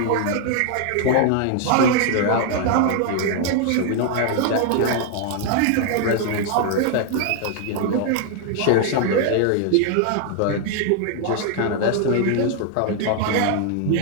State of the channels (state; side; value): different; both; correlation 0.00